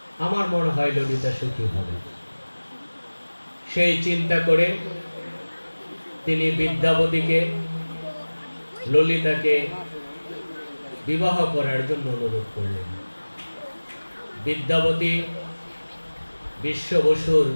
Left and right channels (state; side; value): inverted; both; correlation -1.00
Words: আমার মনে হয় ললিতা সুখী হবে। সেই চিন্তা করে তিনি বিদ্যাপতিকে ললিতাকে বিবাহ করার জন্য অনুরোধ করলেন। বিদ্যাপতি বিশ্ব বসুর